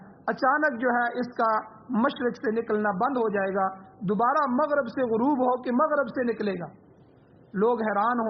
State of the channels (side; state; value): both; identical; correlation 1.00